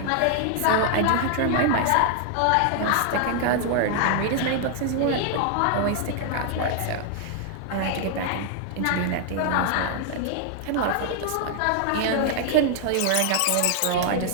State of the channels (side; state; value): both; different; correlation 0.00